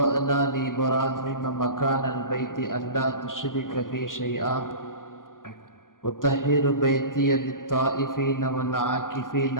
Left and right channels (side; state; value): right; late; 0.90 ms